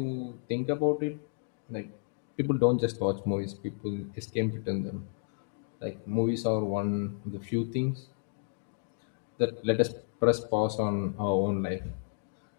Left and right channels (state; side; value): silent; right; digital silence